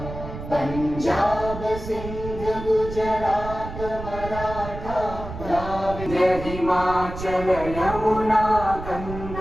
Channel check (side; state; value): right; noise; rumble, 9 dB below the sound